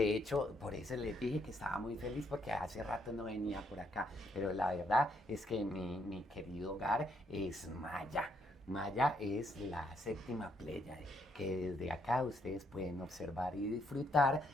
hecho por eso les dije que estaba muy feliz porque hace rato no venía por acá, pero la verdad es que mi querido hogar es Maya. Maya es la séptima Pléyade, que desde acá ustedes pueden observar y disfrutar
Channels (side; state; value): both; normal; correlation 0.73